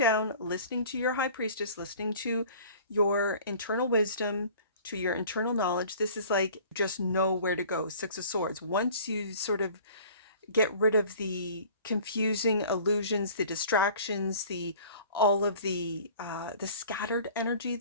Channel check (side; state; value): both; inverted; correlation -0.47